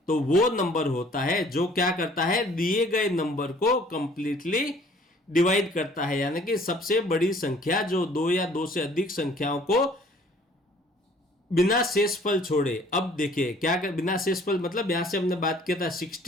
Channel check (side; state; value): both; normal; correlation 0.55